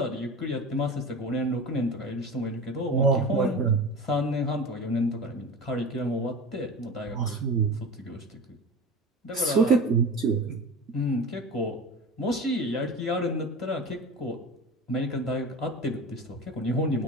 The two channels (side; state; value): both; normal; correlation 0.31